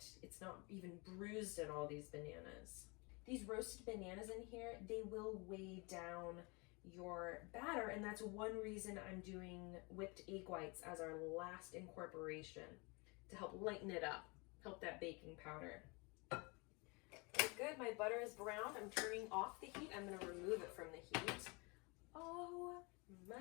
It's not even bruised in all these bananas. These roasted bananas in here, they will weigh down your batter, and that's one reason I'm doing whipped egg whites as our last incorporation, to help lighten it up, help that baking powder. Okay, good, my butter is brown. I'm turning off the heat. I'm gonna remove it from the heat. Oh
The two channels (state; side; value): quieter; right; 29.0 dB